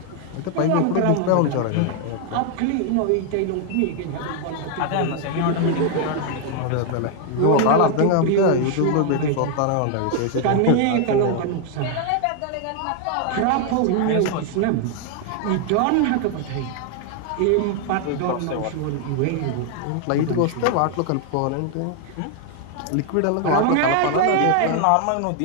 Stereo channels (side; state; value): both; different; correlation 0.00